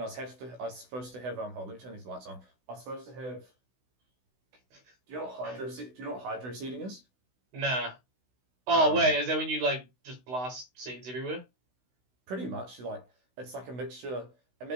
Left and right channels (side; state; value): left; late; 16 ms